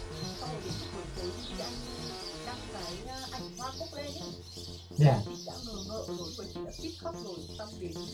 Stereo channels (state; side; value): identical; both; correlation 1.00